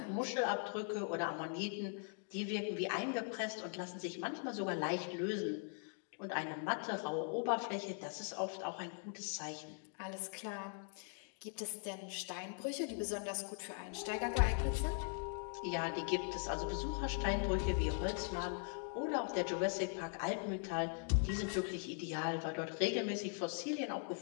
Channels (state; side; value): silent; right; 50 dB below the other